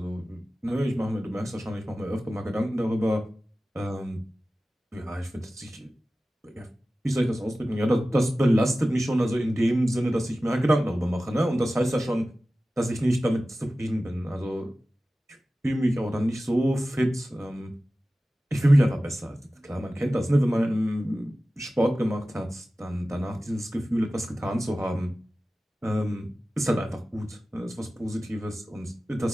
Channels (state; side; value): normal; both; correlation 0.96